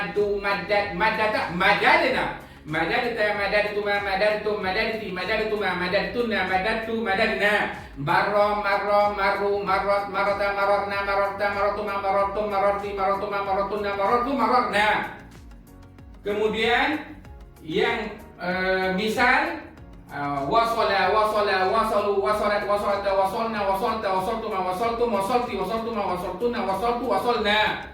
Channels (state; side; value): identical; both; correlation 1.00